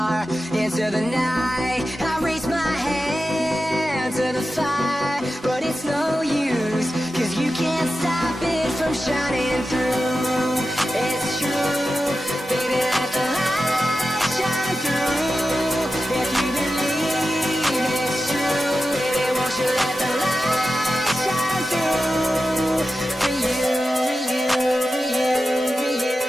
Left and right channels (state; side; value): normal; both; correlation 0.92